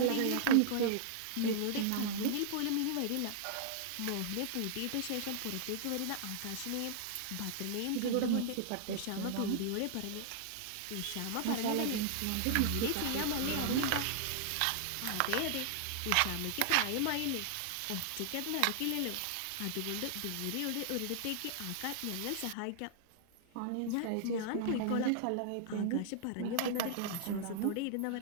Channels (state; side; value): different; both; correlation -0.01